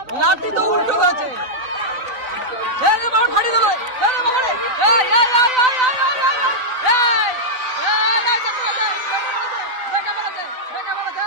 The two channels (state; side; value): late; left; 4.0 ms